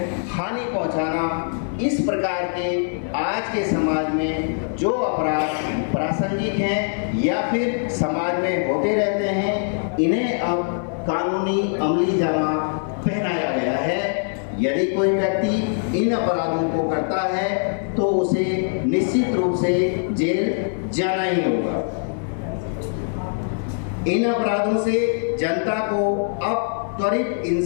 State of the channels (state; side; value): silent; right; 57 dB below the other